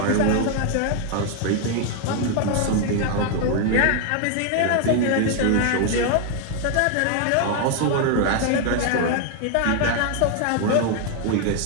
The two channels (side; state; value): both; different; correlation 0.00